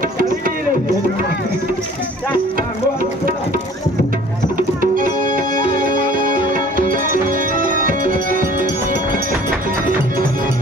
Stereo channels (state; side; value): normal; both; correlation 0.51